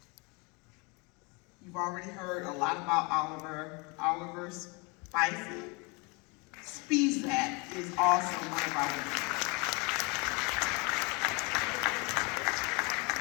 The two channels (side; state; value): right; quieter; 29.3 dB